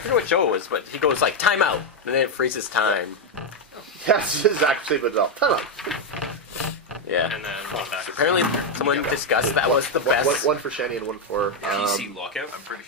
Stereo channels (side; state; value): both; normal; correlation 0.04